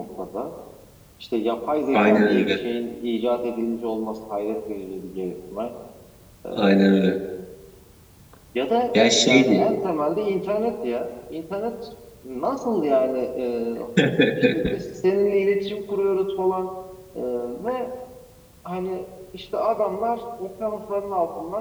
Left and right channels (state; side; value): identical; both; correlation 1.00